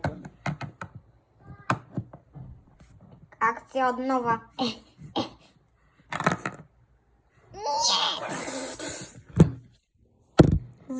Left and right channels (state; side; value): identical; both; correlation 1.00